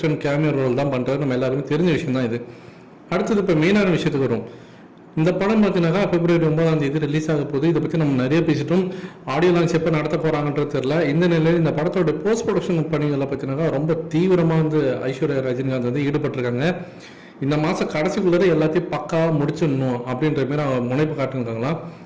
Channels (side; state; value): both; identical; correlation 1.00